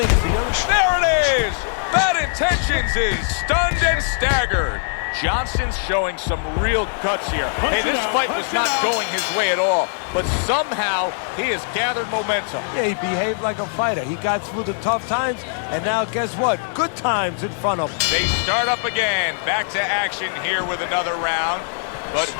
There it is! Bad Intentions is stunned and staggered. Johnson's showing some real guts here. Hey, this fight was not going his way at all, but somehow he has gathered momentum. Yeah, he behaved like a fighter. He got through the tough times, and now guess what? Good times in front of him. They start up again. Back to action here with another round. but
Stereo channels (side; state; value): right; silent; 57 dB below the other